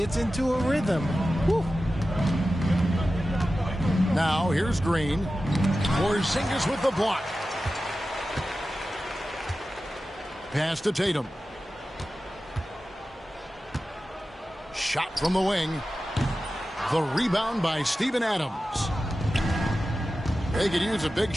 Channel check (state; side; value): normal; both; correlation 0.94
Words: into a rhythm, whew. Now, here's Green. Porzingis with the block. Pass to Tatum. Shot from the wing. The rebound by Steven Adams. They could use a big